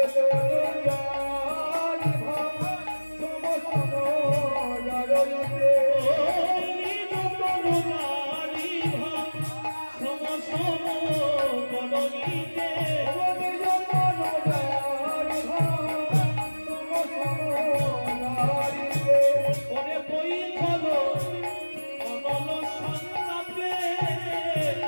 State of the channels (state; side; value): inverted; both; correlation -1.00